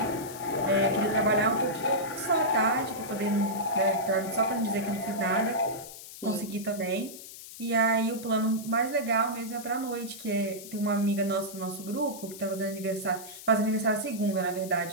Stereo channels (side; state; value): left; noise; hiss, 14 dB below the sound